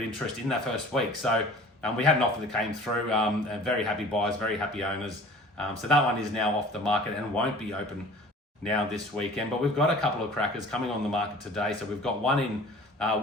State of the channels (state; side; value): normal; both; correlation 0.45